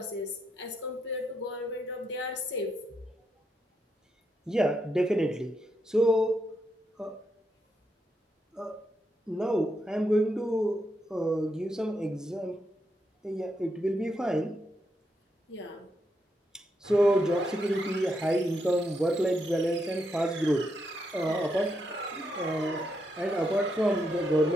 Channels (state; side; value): normal; both; correlation 0.81